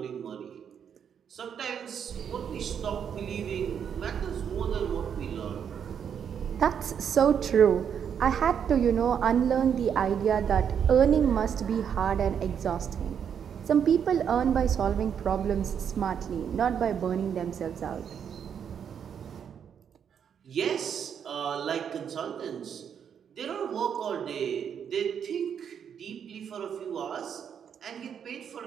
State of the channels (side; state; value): left; quieter; 7.9 dB